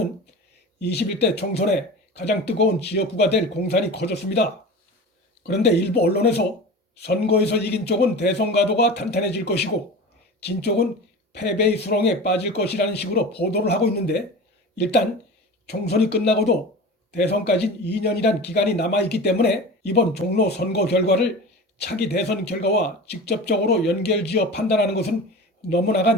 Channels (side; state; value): both; normal; correlation 0.33